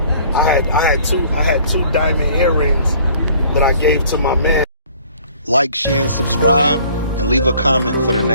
I had two diamond earrings that I gave to my man. Like, share, and subscribe, and leave a comment for the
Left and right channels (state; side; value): inverted; both; correlation -0.55